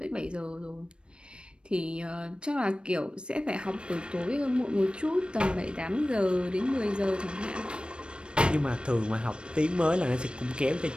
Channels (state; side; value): late; left; 0.056 ms